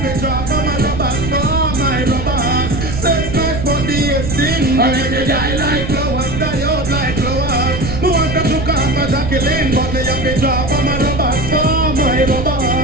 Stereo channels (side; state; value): right; noise; rumble, 6 dB below the sound